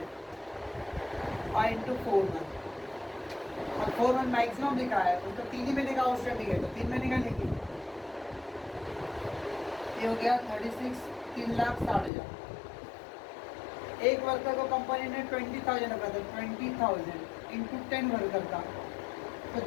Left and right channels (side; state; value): right; drops out; at 12.1 s